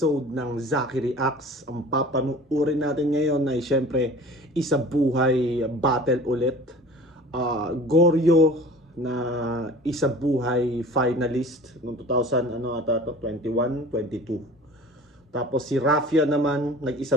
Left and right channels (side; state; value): both; normal; correlation 0.42